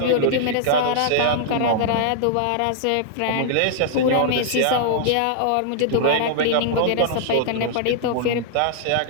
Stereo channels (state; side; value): different; both; correlation -0.01